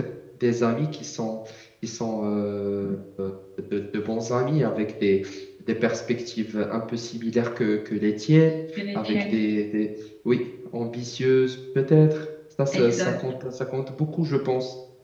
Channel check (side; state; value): both; identical; correlation 1.00